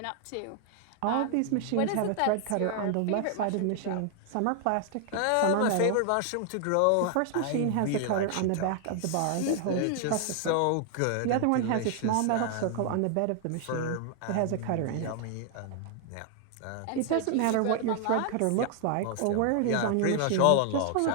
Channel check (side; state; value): both; different; correlation 0.00